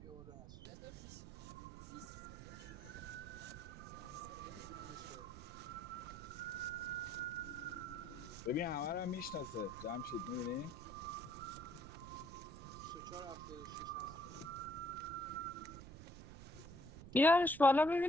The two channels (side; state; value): right; noise; rumble, 13 dB below the sound